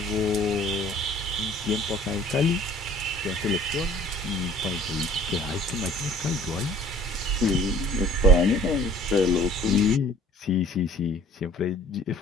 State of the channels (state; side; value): normal; both; correlation 0.51